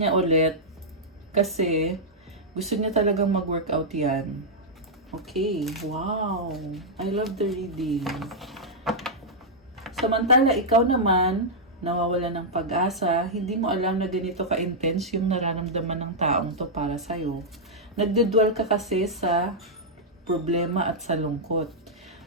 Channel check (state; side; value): normal; both; correlation -0.07